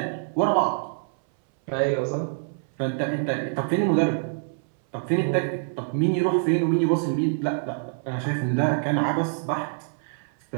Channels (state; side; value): silent; left; 61 dB below the other